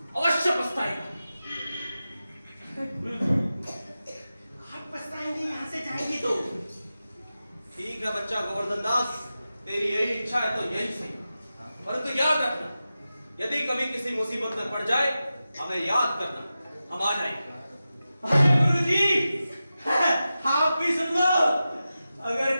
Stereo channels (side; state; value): both; inverted; correlation -0.93